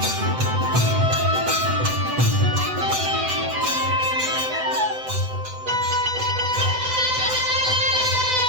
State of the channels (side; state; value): left; late; 7.9 ms